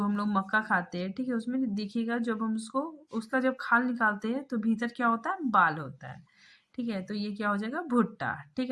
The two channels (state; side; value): identical; both; correlation 1.00